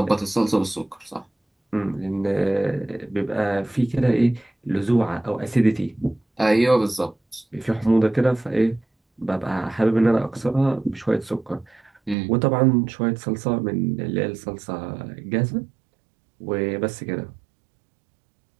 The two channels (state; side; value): drops out; left; at 12.2 s